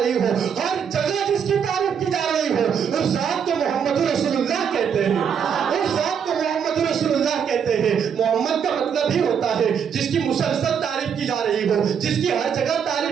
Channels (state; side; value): quieter; left; 7.4 dB